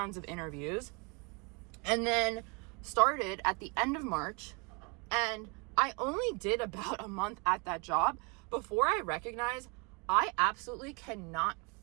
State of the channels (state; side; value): quieter; left; 30.3 dB